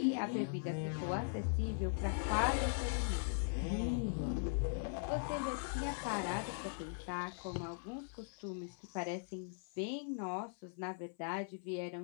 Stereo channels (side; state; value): right; silent; 51 dB below the other